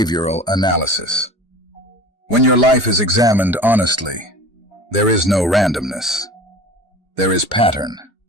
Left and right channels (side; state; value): both; normal; correlation 0.39